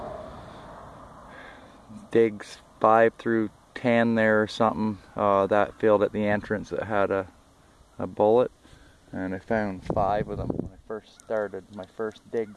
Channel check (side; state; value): both; identical; correlation 1.00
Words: digs 5 through 10 there or something. That field at the entrance that had a bullet, and I found 5 of them when I first started my first